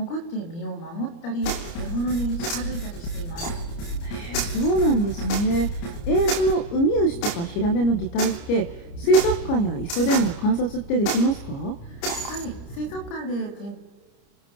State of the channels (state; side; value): late; right; 29 ms